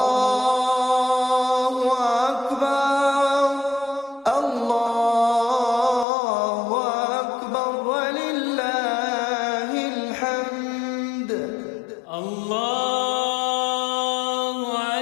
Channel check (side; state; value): right; drops out; at 6.1 s